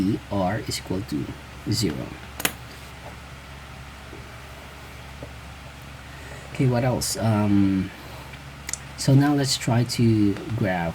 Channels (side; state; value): both; identical; correlation 1.00